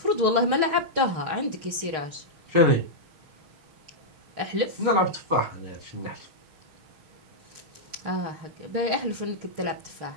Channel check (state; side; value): late; left; 6.5 ms